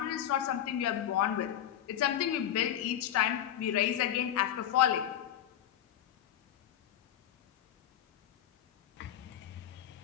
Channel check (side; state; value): right; quieter; 11.1 dB